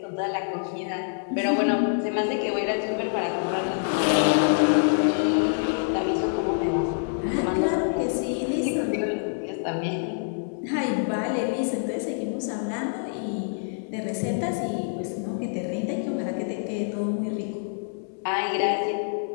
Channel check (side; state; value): right; silent; digital silence